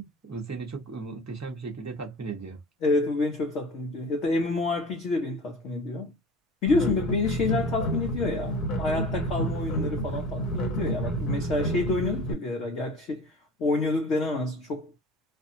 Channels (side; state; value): both; normal; correlation 0.40